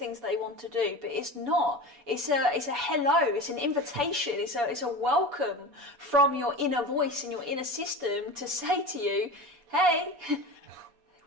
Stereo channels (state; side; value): late; left; 4.2 ms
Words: they want to do, but it's not. It's a hello, it's an invitation, it's a welcome from your inner voice and your inner system to say to you, hey,